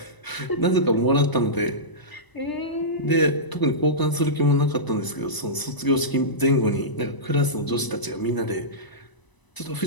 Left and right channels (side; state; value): right; late; 1.0 ms